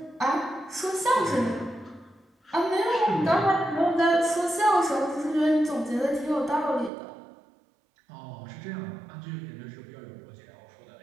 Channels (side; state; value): left; drops out; at 6.9 s